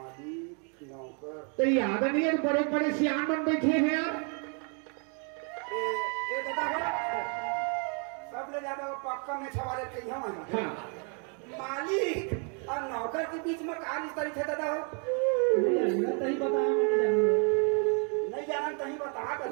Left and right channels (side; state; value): left; quieter; 39.2 dB